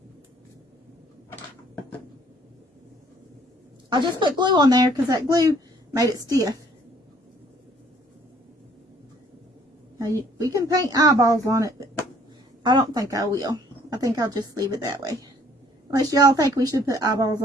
I just put glue on there because that glue made it stiff. Now we can paint eyeballs on it, but I don't think I will. I think I'll just leave it that way. Unless y'all think we should put eyeballs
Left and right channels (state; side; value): normal; both; correlation 0.60